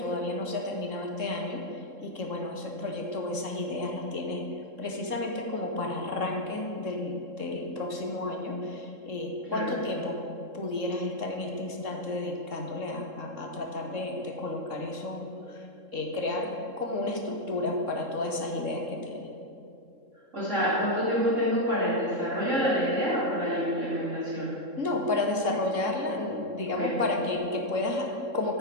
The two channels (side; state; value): left; late; 3.7 ms